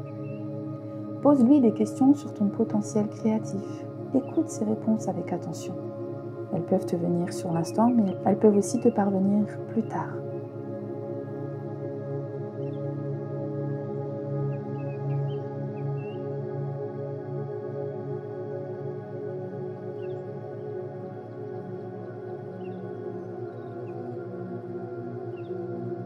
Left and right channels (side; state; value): both; identical; correlation 1.00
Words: Pose-lui des questions sur ton potentiel créatif. Écoute ses réponses avec attention. Elles peuvent te venir sur l'instant, mais elles peuvent aussi te parvenir plus tard.